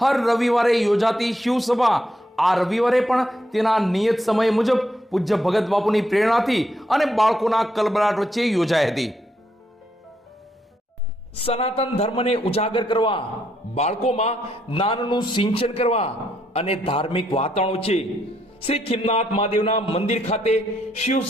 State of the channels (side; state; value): both; normal; correlation 0.76